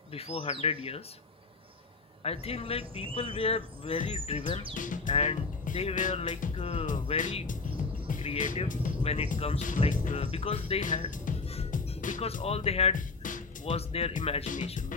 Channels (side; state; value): right; quieter; 4.0 dB